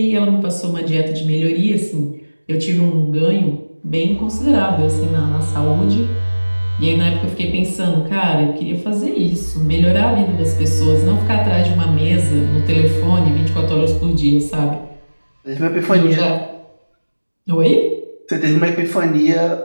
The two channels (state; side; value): inverted; both; correlation -1.00